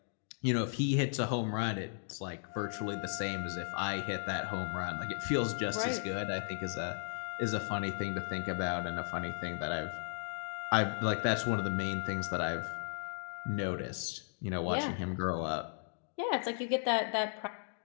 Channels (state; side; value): silent; right; digital silence